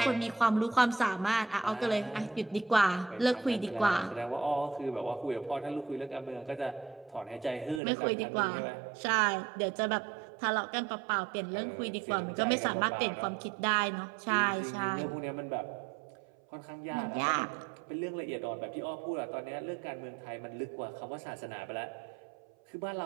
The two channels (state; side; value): drops out; left; at 7.8 s